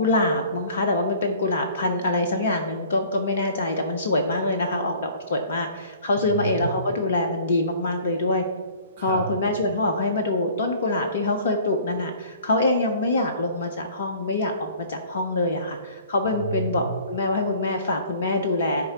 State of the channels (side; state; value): both; inverted; correlation -0.50